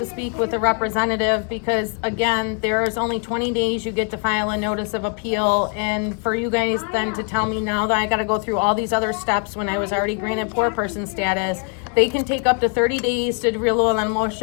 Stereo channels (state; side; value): quieter; right; 39.2 dB